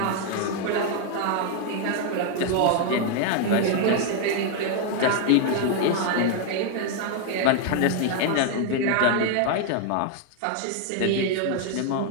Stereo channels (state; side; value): different; both; correlation 0.00